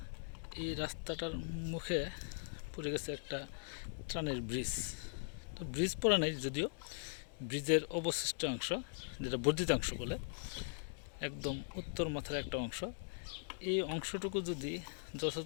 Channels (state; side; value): silent; right; digital silence